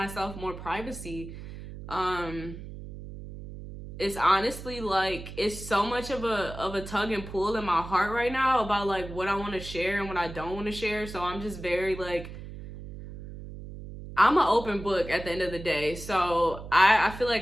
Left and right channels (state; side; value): noise; right; hum, 12 dB below the sound